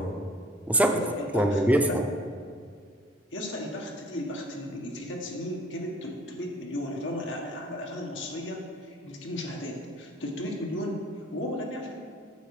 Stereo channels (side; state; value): both; normal; correlation 0.54